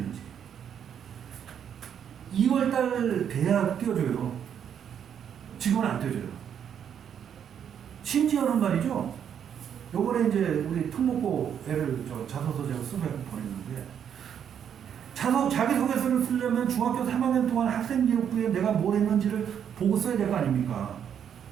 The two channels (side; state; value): left; quieter; 8.6 dB